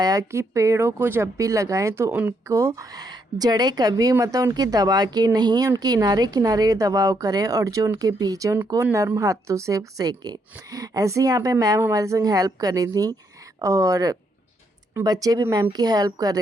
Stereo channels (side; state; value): both; normal; correlation 0.75